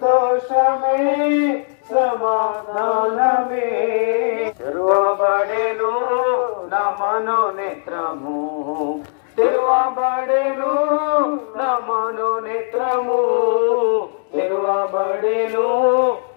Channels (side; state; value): right; silent; 65 dB below the other